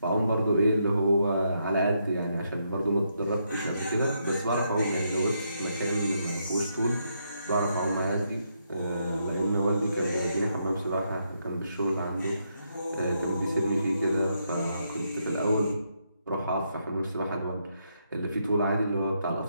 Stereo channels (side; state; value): both; inverted; correlation -0.78